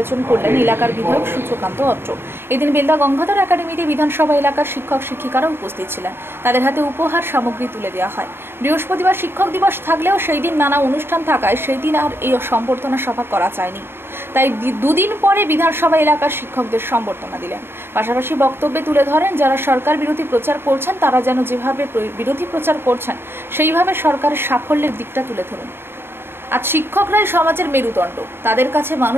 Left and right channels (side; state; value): left; late; 0.11 ms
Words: করলেন এলাকার বিধায়ক সূর্যকান্ত অত্র। এদিন বেলদা গঙ্গাধর একাডেমিতে বিধানসভা এলাকার শিক্ষক শিক্ষিকারা উপস্থিত ছিলেন। তাদের হাতে উপহার সামগ্রী তুলে দেওয়া হয়। বৃহস্পতিবার শিক্ষক দিবস থাকলেও সেই দিন নানা অনুষ্ঠান থাকায় সেই দিন আর এই সংবর্ধনা সভা করা যায়নি। তাই দুদিন পরে বিধানসভা এলাকার শিক্ষকদের সংবর্ধনা দিলেন। পাশাপাশি বক্তব্যে তুলে ধরেন, যারা সরকার বিরোধী প্রচার করছেন তারা যেন যেভাবে বিরোধী প্রচার করছেন সেইভাবে সরকারের সাফল্যের দিকটা তুলে ধরুন। আজ শিক্ষকরাই সমাজের মেরুদণ্ড, তাদের কাছে